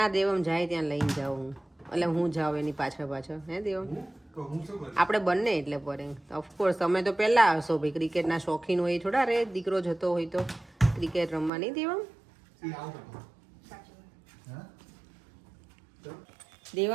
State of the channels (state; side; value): drops out; left; at 11.5 s